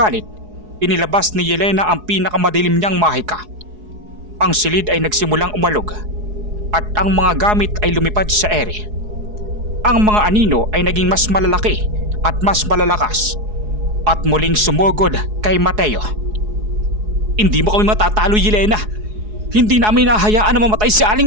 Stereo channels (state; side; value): late; left; 4.7 ms